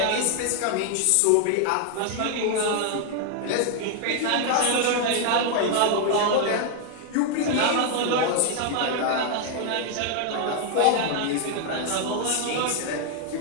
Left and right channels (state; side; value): different; both; correlation 0.00